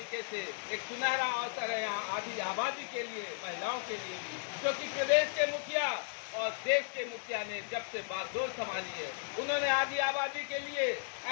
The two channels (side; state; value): right; silent; digital silence